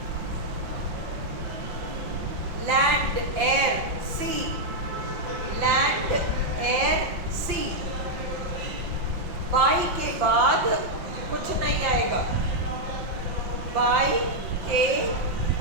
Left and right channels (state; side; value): late; left; 5.7 ms